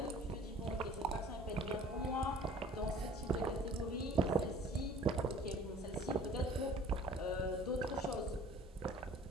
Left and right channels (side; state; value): both; normal; correlation 0.50